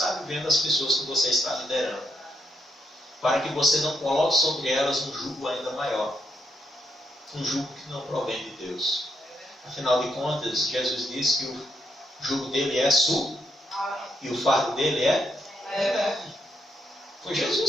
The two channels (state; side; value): normal; both; correlation 0.77